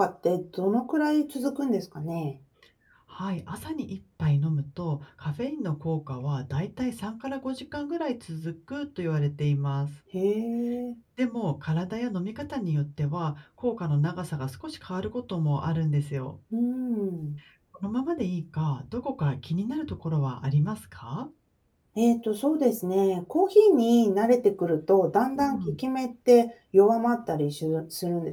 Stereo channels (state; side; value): identical; both; correlation 1.00